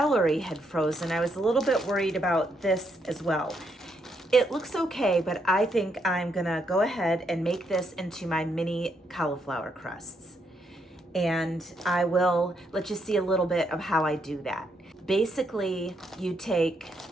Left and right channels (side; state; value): both; normal; correlation 0.77